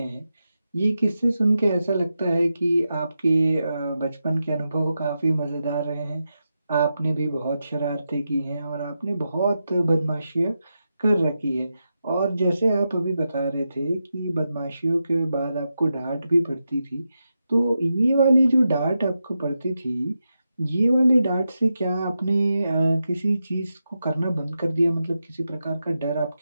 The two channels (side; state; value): both; inverted; correlation -0.88